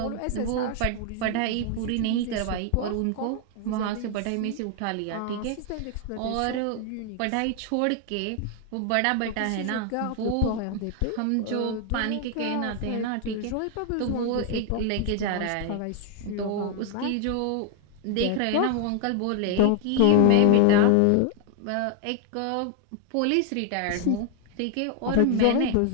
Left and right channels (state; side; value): different; both; correlation 0.00